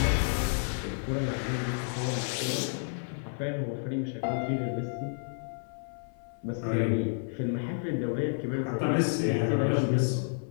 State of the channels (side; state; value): right; silent; 56 dB below the other